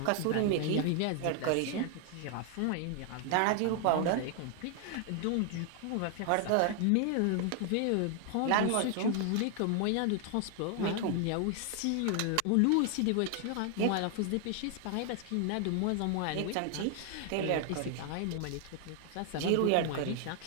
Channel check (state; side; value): different; both; correlation 0.00